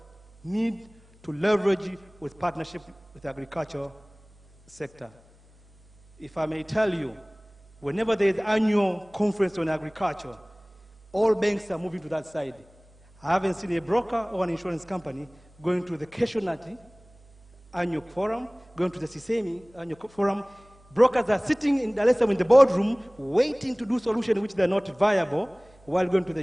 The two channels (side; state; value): right; noise; hum, 28 dB below the sound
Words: need to leverage with partnership with the agriculture sector. If I may tell you, whenever there is annual conference on agriculture, all banks are moving to that side. I haven't seen a broker or an insurance company going to the Keshonati annual forum, going to the Sisemi annual forum. Brokers are sitting in Dar es Salaam in the boardroom waiting to do solutions which they're not viable while going to the